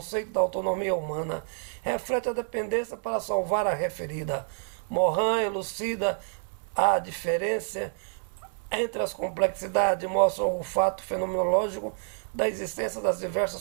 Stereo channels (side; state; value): left; silent; digital silence